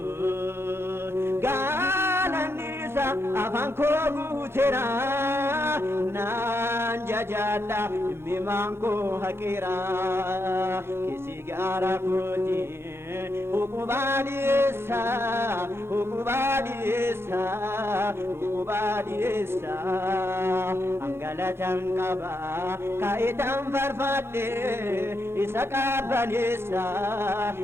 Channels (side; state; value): left; late; 0.12 ms